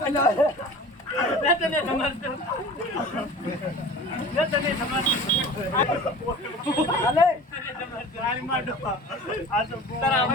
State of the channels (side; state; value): both; normal; correlation 0.40